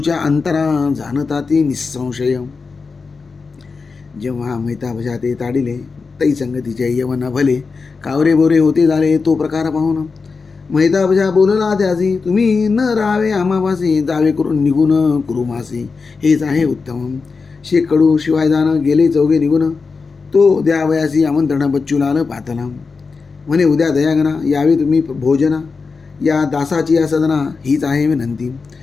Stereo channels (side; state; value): right; quieter; 4.7 dB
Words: अंतरा जाणता ती निसंशय. जेव्हा मैताबशा ते ताडिले, तै संगतीचे यवन भले कावरे बोरे होते झाले. तो प्रकार पाहून मैताबशा बोलला त्यासी, तुम्ही न राहावे आम्हापासी, जावे करून निघून कुरुमासी, हेच आहे उत्तम. शेकडू शिवाय जाणं गेले चौघे निघून. तो द्यावयासी आमंत्रण बच्चूलाल पातला. म्हणे उद्या दयागना यावे तुम्ही भोजना. या दासाची या सदना हीच आहे विनंती.